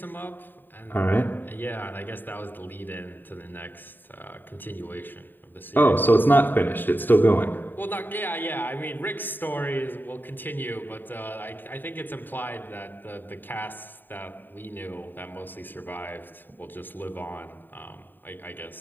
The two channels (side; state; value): right; late; 0.092 ms